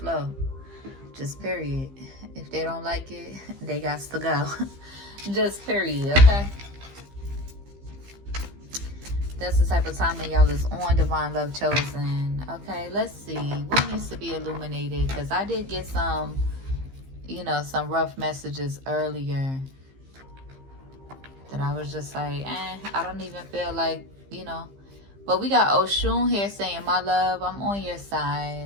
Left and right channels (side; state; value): left; late; 15 ms